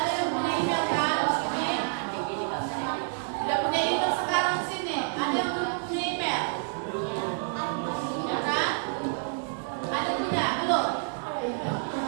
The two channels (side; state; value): left; silent; 56 dB below the other